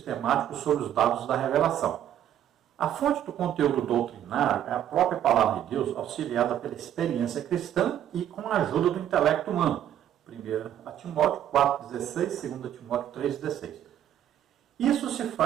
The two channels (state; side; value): quieter; left; 10.9 dB